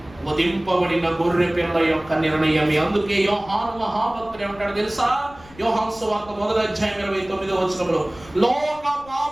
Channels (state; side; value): noise; left; rumble, 23 dB below the sound